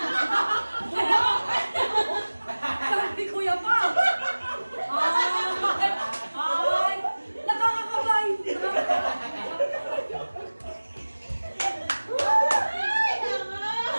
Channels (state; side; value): inverted; both; correlation -1.00